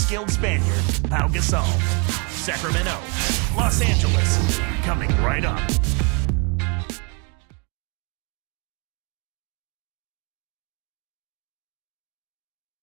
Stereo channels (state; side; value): quieter; left; 33.6 dB